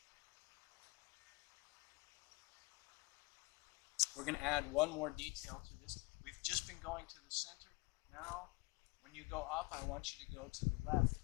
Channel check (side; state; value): right; quieter; 25.5 dB